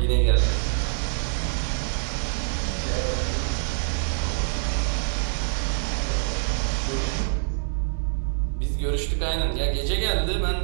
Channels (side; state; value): left; silent; 62 dB below the other